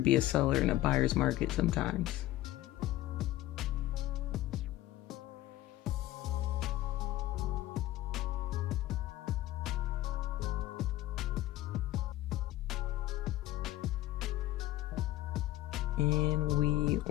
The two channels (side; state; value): right; quieter; 15.3 dB